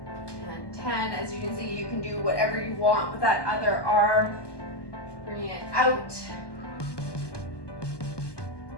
and 10. As you can see, you can do whatever you want with that other arm. Bring it out.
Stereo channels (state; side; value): late; right; 1.2 ms